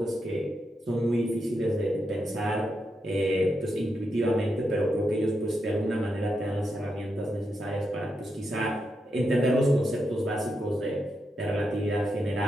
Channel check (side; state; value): both; normal; correlation 0.84